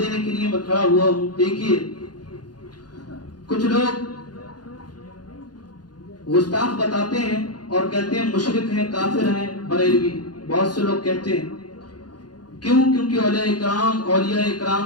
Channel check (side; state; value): right; late; 0.70 ms